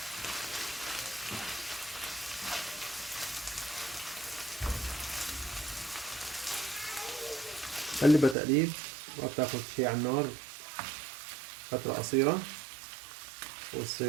قلبها تقليب، ما بتاخد شي على النار، فترة قصيرة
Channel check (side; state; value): left; drops out; at 8.3 s